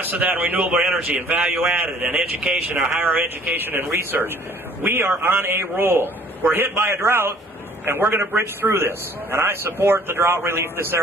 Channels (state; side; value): normal; both; correlation 0.55